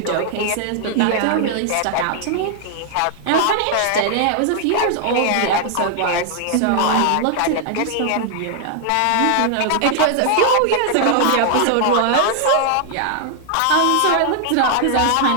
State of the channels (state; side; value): different; both; correlation -0.01